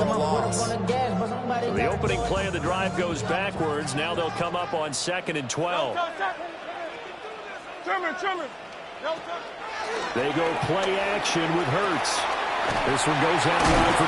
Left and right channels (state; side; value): identical; both; correlation 1.00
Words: a loss. The opening play of the drive goes backwards. Now they'll come up on 2nd and 12. They go play action with Hurts. This one goes out wide for